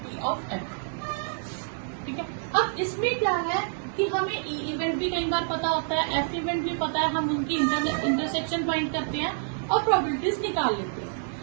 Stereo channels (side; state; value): left; silent; digital silence